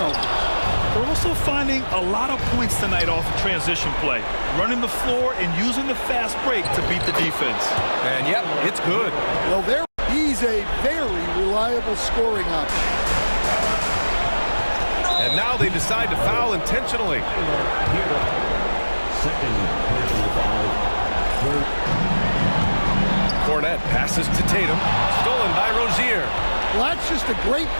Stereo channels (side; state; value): both; inverted; correlation -1.00